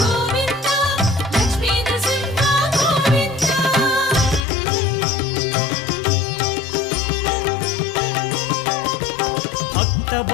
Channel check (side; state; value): right; drops out; at 4.4 s